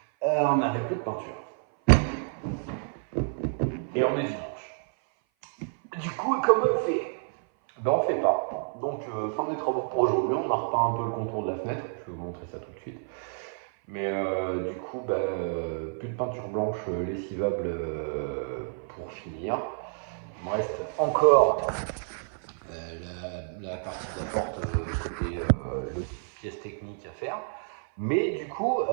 On n'avait plus de peinture. Et on est dimanche. Du coup comment on fait? Ben on fait pas. Donc fin des travaux pour aujourd'hui, on a repeint un peu le contour de la fenêtre, je vais vous montrer ça tout de suite. Mais du coup, plus de peinture blanche lessivable pour finir. Il me reste encore la partie de la porte côté le pièce technique à faire. Mais du coup,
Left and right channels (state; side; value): silent; left; 56 dB below the other